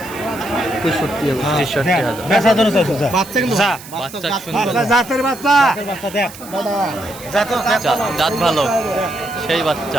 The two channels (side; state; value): right; noise; hiss, 17 dB below the sound